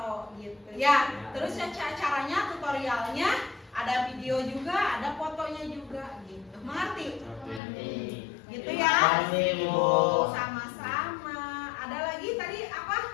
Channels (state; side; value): drops out; right; at 7.6 s